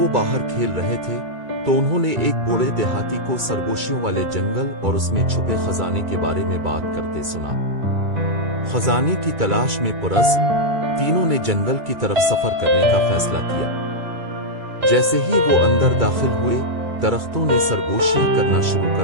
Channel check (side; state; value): left; late; 2.3 ms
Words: وہ باہر کھیل رہے تھے تو انہوں نے ایک بوڑھے دیہاتی کو سرگوشیوں والے جنگل اور اس میں چھپے خزانے کے بارے میں بات کرتے سنا۔ خزانے کی تلاش میں پرعزم تینوں نے جنگل کی طرف سفر کرنے کا فیصلہ کیا۔ جیسے ہی وہ اندر داخل ہوئے، درختوں نے سرگوشیاں کرنا شروع